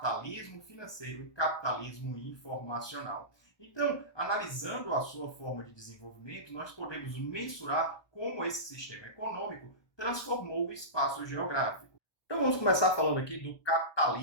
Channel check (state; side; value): late; right; 1.2 ms